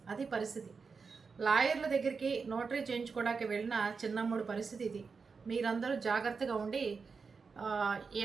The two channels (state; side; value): quieter; left; 5.1 dB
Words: అది పరిస్థితి. లాయర్ల దగ్గరికి నోటరీ చేయించుకోవడానికి వెళ్ళిన చిన్నమ్ముడు పరిస్థితి ఇది. మీరందరూ జాగ్రత్తగా ఉండి